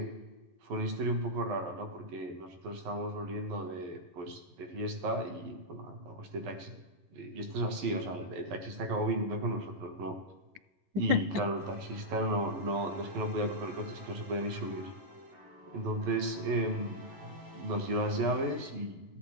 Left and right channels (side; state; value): left; late; 11 ms